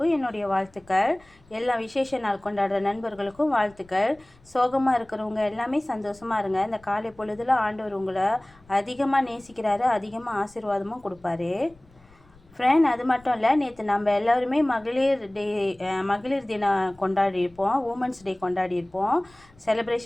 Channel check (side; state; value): left; noise; rumble, 28 dB below the sound